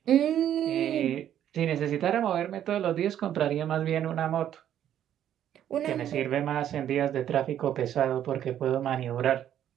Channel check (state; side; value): quieter; left; 10.7 dB